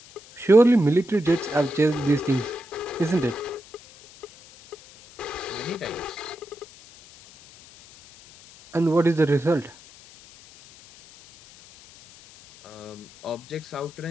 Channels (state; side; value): noise; left; hiss, 22 dB below the sound